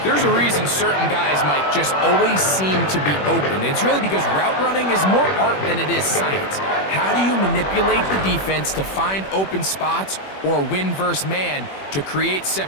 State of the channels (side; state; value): right; late; 21 ms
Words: There's a reason certain guys, Mike, just always seem to be open. It's really because route running is more art than it is science. How do you manipulate the defense to find open spots or win versus man to create